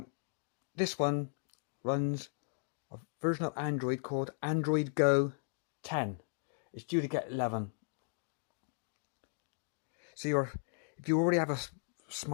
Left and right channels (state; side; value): silent; right; digital silence